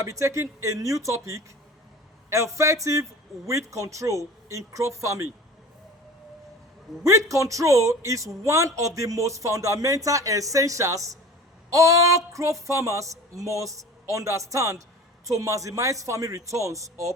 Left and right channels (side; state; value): both; normal; correlation 0.39